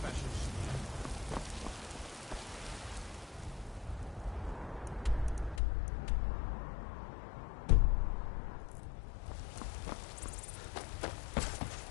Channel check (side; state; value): right; drops out; at 5.6 s